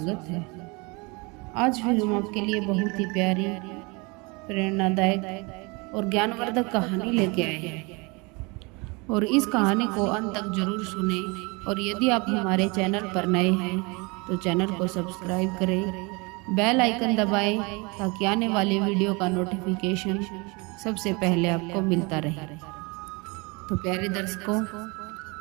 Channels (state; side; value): quieter; left; 28.0 dB